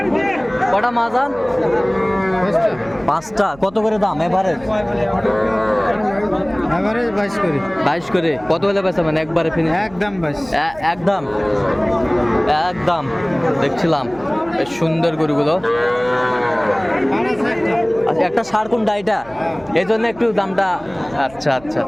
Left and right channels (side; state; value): right; noise; hum, 22 dB below the sound